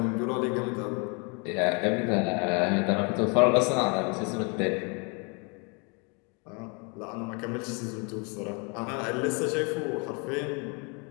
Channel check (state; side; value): quieter; right; 33.4 dB